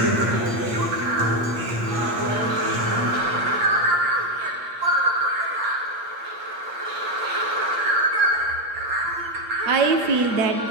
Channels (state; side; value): late; left; 8.6 ms